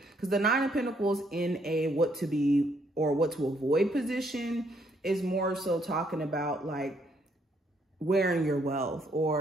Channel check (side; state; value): both; normal; correlation 0.70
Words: Because the Nine of Pentacles in a what to be or what to avoid position is more so talking about like wearing your wealth